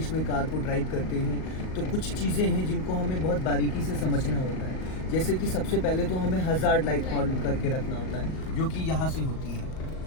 में कार को ड्राइव करते हैं तो कुछ चीज़ें हैं जिनको हमें बहुत बारीकी से समझना होता है। जैसे कि सबसे पहले तो हमें हज़ार्ड लाइट ऑन करके रखना होता है, जो कि यहाँ से होती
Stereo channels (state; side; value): late; right; 38 ms